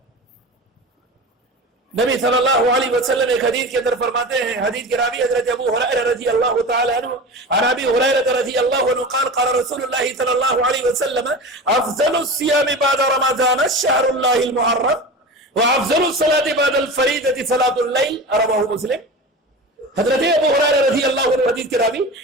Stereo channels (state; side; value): normal; both; correlation 0.30